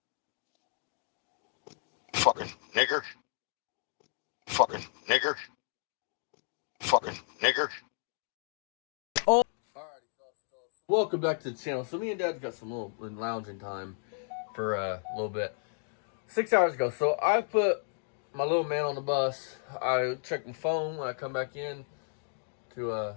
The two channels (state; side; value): silent; right; digital silence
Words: Fucking nigger. Fucking nigger. Fucking nigger. Welcome back to the channel. So me and Dad got some little lounging time for a little bit. 6 hours ago. So I put my little man on the bus. I checked my phone when I come back in to